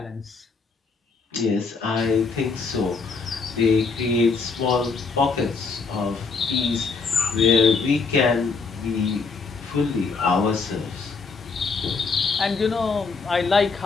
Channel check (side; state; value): right; quieter; 4.7 dB